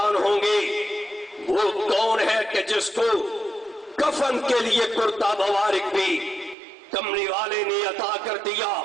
ہوں گے وہ کون ہے کہ جس کو کفن کے لیے کرتا مبارک بھی کملی والے نے عطا کر دیا۔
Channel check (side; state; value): left; drops out; at 6.6 s